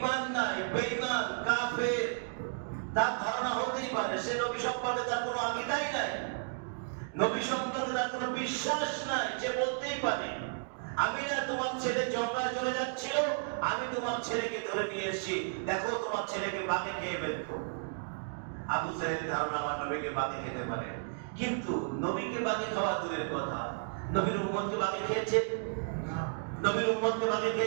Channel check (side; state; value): left; silent; digital silence